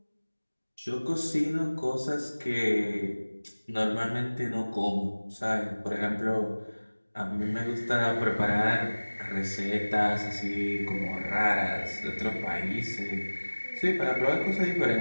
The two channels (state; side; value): inverted; both; correlation -1.00